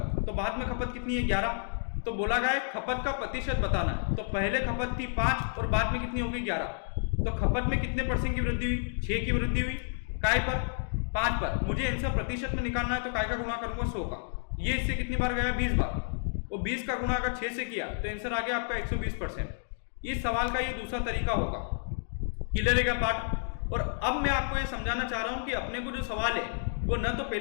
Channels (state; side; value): silent; right; digital silence